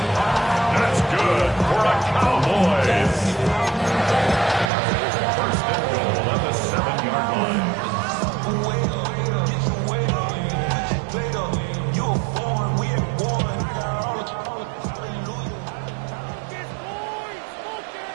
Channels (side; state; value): left; drops out; at 4.7 s